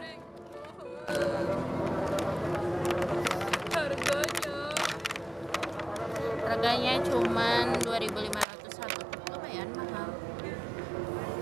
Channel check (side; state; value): left; drops out; at 8.5 s